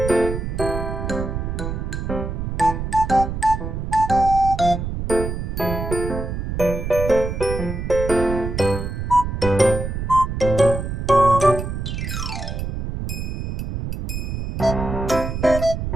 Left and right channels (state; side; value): noise; right; rumble, 4 dB below the sound